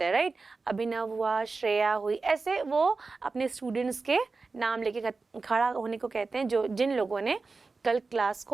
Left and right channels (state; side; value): quieter; left; 4.0 dB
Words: हैं, राइट. अभिनव हुआ, श्रेया हुई, ऐसे वो अपने स्टूडेंट्स के नाम लेके खड़ा होने को कहते हैं, जो जिन लोगों ने कल क्लास को